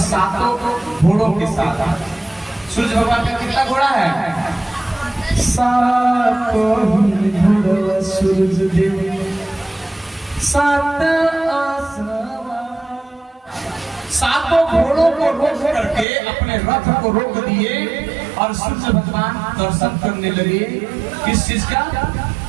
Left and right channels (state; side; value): drops out; left; at 16.1 s